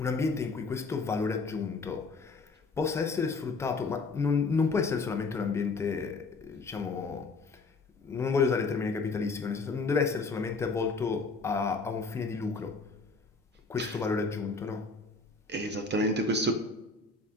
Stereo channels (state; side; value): quieter; right; 3.9 dB